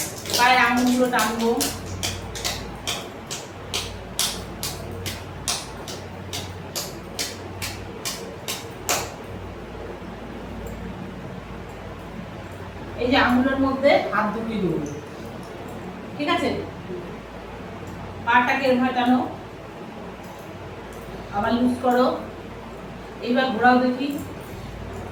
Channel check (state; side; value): identical; both; correlation 1.00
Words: পায়ের আঙুলগুলো টানবো। এই যে আঙুলের মধ্যে হাত ঢুকিয়ে দেবো, ঠিক আছে? পাটাকে এরকম টানো, আবার লুজ করো, এইবার ঘোরাও দেখি।